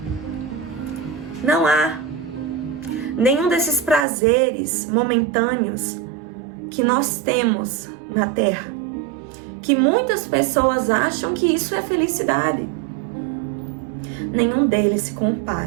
nenhum desses prazeres momentâneos que nós temos na terra, que muitas pessoas acham que isso é felicidade. Nenhum deles se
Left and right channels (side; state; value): left; drops out; at 4.0 s